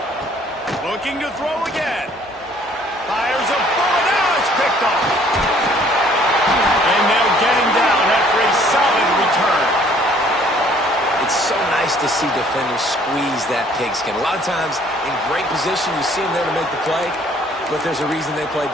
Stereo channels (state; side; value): normal; both; correlation 0.59